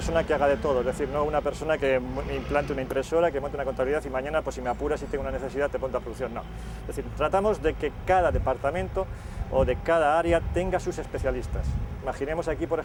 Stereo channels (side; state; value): both; identical; correlation 1.00